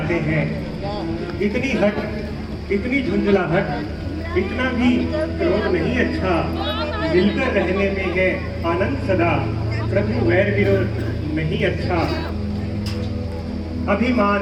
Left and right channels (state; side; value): identical; both; correlation 1.00